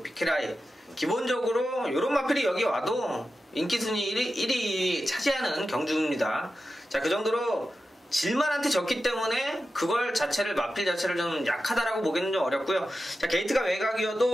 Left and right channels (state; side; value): normal; both; correlation 0.92